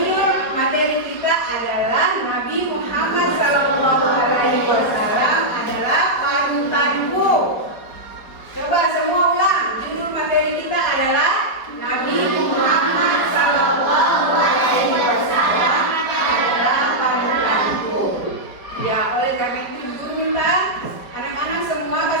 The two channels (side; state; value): right; late; 4.7 ms